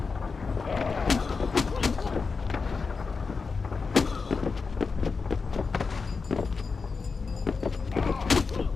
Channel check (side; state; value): right; quieter; 4.7 dB